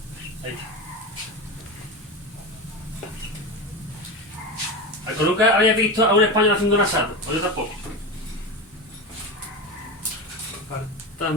Ahí está. ¿Algo nunca había visto a un español haciendo un asado? O yo tampoco.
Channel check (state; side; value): normal; both; correlation 0.22